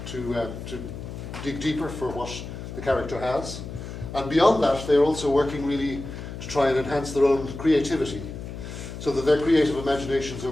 to dig deeper for what the character has. And beyond that, they're also working really to try and enhance their own creativity, so that their creative imaginations are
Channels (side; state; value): left; noise; hum, 9 dB below the sound